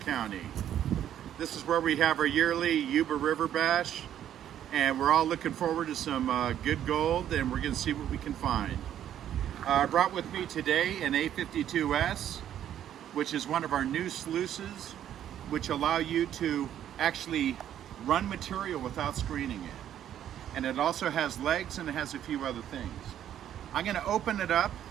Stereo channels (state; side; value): quieter; left; 10.7 dB